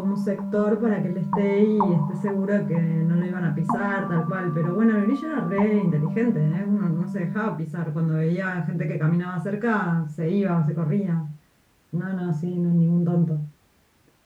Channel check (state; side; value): identical; both; correlation 1.00